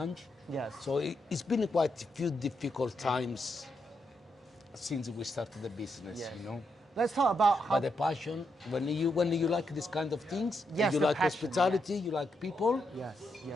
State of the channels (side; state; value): both; normal; correlation 0.82